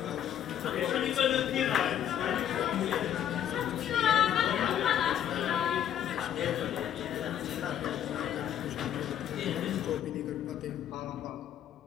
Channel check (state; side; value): quieter; right; 10.1 dB